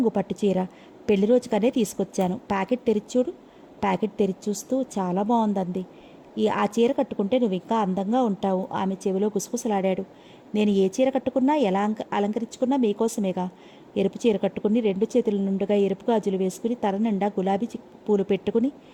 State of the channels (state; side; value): identical; both; correlation 1.00